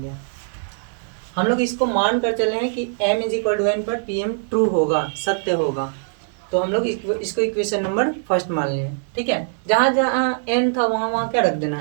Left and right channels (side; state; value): left; silent; digital silence